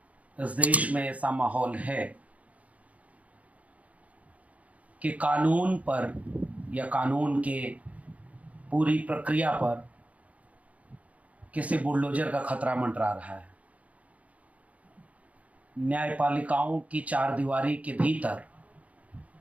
इस देश में ऐसा माहौल है कि कानून पर या कानून के पूरी प्रक्रिया पर किसी बुलडोजर का खतरा मंडरा रहा है। न्यायपालिकाओं की 4 दीवारी के भीतर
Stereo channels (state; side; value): late; left; 0.068 ms